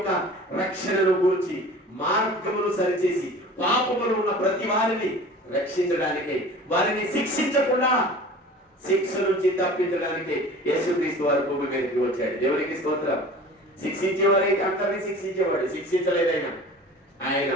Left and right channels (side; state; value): both; normal; correlation 0.41